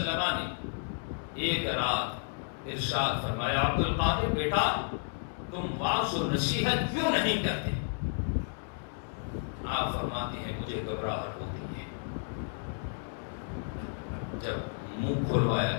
نے ایک رات ارشاد فرمایا، عبد القادر بیٹا تم واعظ و نصیحت کیوں نہیں کرتے؟ آپ فرماتے ہیں مجھے گھبراہٹ ہوتی ہے۔ جب منہ کھلوایا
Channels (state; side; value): silent; right; digital silence